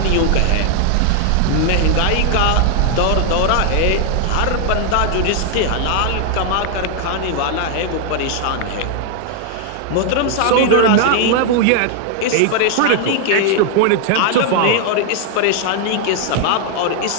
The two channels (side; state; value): both; different; correlation 0.00